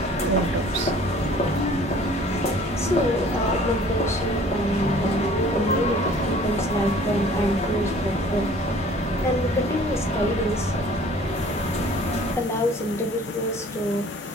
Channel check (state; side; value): normal; both; correlation 0.51